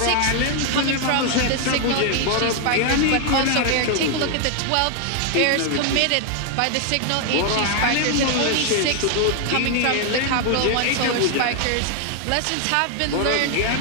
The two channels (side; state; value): both; different; correlation 0.01